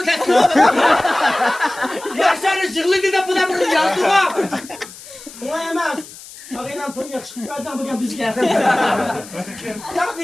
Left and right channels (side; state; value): left; noise; hiss, 17 dB below the sound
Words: teslim oldu? Yaşarlı zırlıydı da buna bunu yazdı mı? Buna yemez. Ağıyla ton yakışıklı bir adam bugün biz geldi. Ya